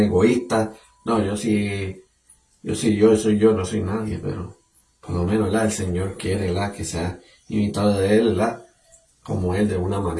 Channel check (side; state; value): both; identical; correlation 1.00